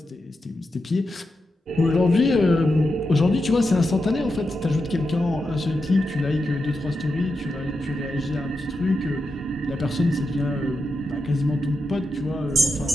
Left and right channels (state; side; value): normal; both; correlation 0.88